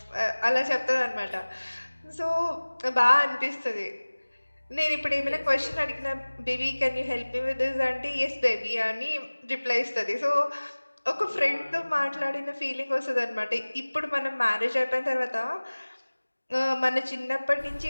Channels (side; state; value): both; inverted; correlation -1.00